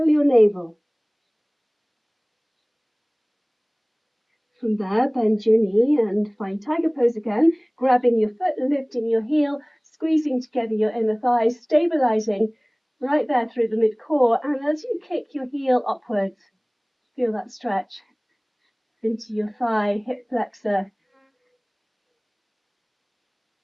your navel. From there, bend your knee and find tiger pose again, grabbing your foot, lifting your heel, squeezing together your inner thighs, stabilizing right there through the mid-core, and as you kick your heel upwards, feel that stretch into your thigh, hip flexor.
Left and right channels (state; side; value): identical; both; correlation 1.00